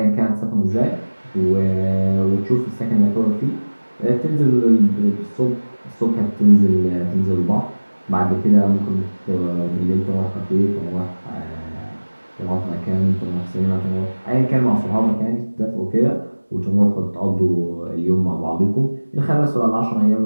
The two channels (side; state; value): both; inverted; correlation -1.00